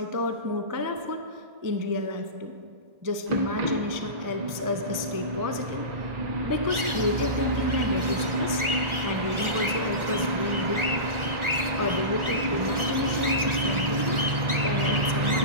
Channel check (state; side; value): late; left; 1.4 ms